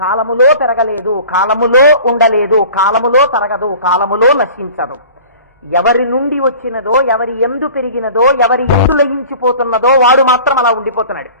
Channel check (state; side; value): inverted; both; correlation -0.43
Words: కాలములో పెరగలేదు, కాలములో ఉండలేదు, కాలములో తరగదు, కాలములో నశించదు. ఎవరి నుండి వచ్చినదో, ఎవరి ఎందు పెరిగినదో, ఎవరి ఎందు లయించిపోతున్నదో వాడు మాత్రం అలా ఉండిపోతున్నాడు.